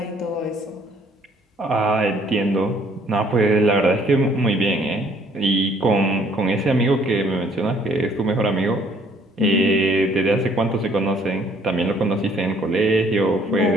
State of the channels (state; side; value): normal; both; correlation 0.61